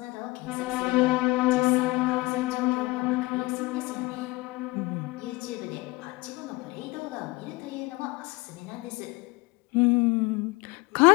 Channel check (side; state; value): right; quieter; 22.4 dB